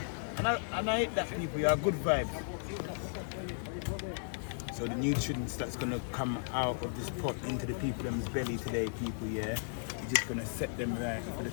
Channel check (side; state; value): right; silent; digital silence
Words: And I eat that, people, yeah, good vibes. So the nutrients that's gonna come out of this pot into the people them's belly today, people, yeah. You're just gonna set them right for the